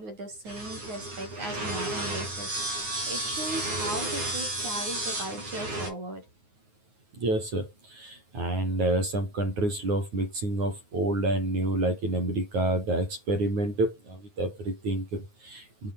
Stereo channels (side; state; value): left; late; 9.5 ms